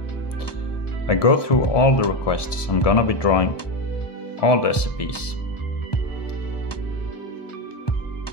go through all the requests. I'm gonna be drawing all the SCPs,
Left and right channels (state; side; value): late; right; 1.2 ms